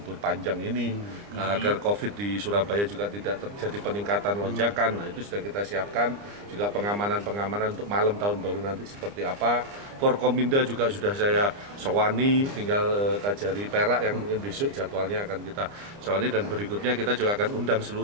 panjang ini, agar COVID di Surabaya juga tidak terjadi peningkatan lonjakan. Nah, itu sudah kita siapkan, juga pengamanan-pengamanan untuk malam tahun baru nanti seperti apa. Forkominda juga sudah saya sowani, tinggal Kajari Perak yang mungkin besok jadwalnya akan kita sowani, dan berikutnya kita juga akan undang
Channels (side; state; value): left; late; 29 ms